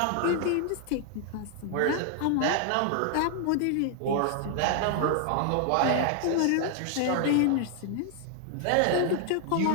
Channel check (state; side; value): different; both; correlation 0.00